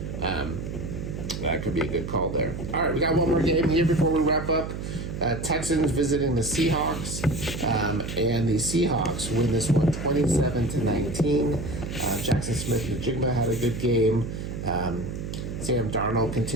That could be a good call there. All right, we got one more game here before we wrap up. Texans visiting the Seahawks, and the Seahawks win this one 27-19. Jackson Smith-Njigba had a good game. Sam Darnold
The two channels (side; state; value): right; noise; hum, 6 dB below the sound